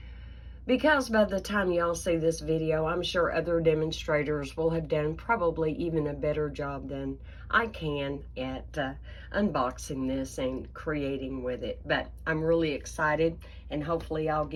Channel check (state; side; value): identical; both; correlation 1.00